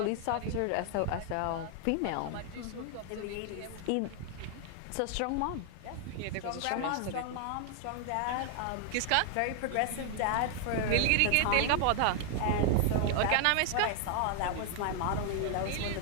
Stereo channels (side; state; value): both; different; correlation 0.00